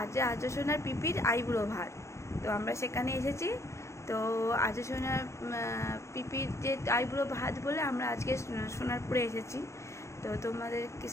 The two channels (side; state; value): right; late; 0.14 ms